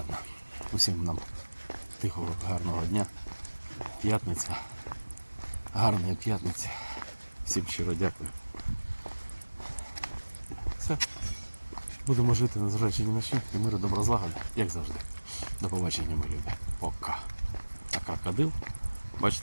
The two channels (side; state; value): both; inverted; correlation -1.00